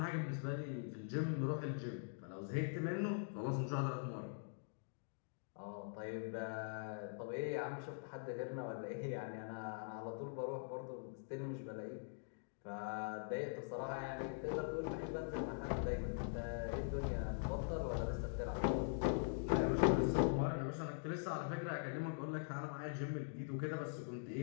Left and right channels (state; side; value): silent; right; digital silence